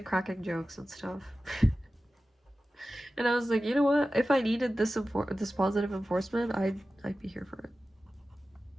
cracking jokes and stuff. And I was like, you know what, if I needed this positive enforcement, I'd be here for it.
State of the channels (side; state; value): both; normal; correlation 0.95